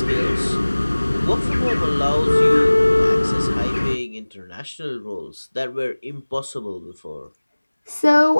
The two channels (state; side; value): inverted; both; correlation -1.00